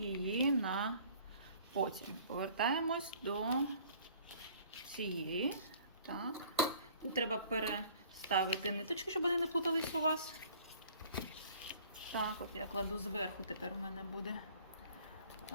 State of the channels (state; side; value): inverted; both; correlation -0.53